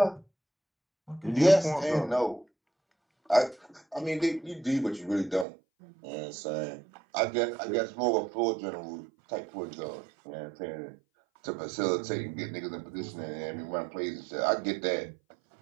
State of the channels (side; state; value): left; drops out; at 5.5 s